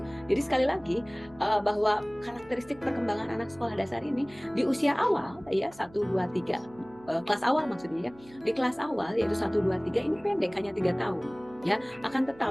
Jadi sekali lagi bahwa karakteristik perkembangan anak sekolah dasar ini di usia awal, ya, 1, 2, 3, kelas awal maksudnya, ya. Di kelas awal yaitu 1, 2, 3 ini pendek, hanya 3 tahun, ya. Akan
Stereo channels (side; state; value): right; noise; hum, 23 dB below the sound